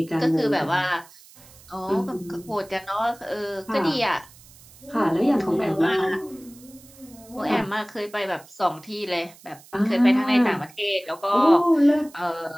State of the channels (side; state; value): right; noise; hiss, 23 dB below the sound